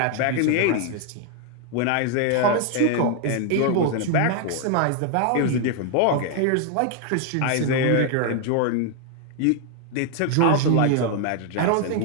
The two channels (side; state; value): both; different; correlation 0.00